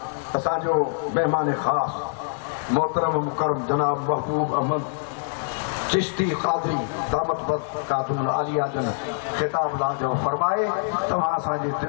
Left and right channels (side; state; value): right; silent; digital silence